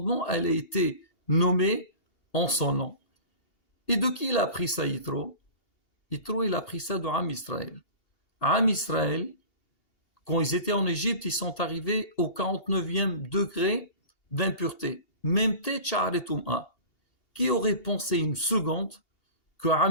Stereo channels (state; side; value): late; right; 2.8 ms